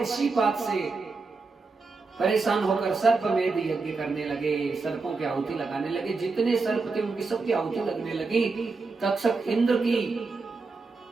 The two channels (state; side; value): quieter; left; 4.1 dB